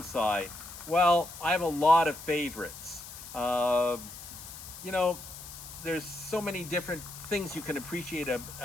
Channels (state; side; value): noise; left; hiss, 13 dB below the sound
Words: Well, I have a lot of favorites. You know, there's so many different things you can appreciate